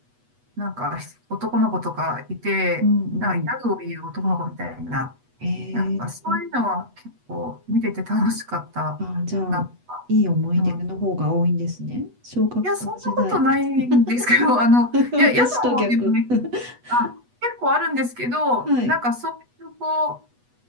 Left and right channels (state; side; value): late; left; 8.2 ms